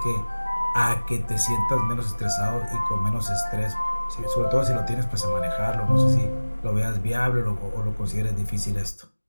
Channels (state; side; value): inverted; both; correlation -1.00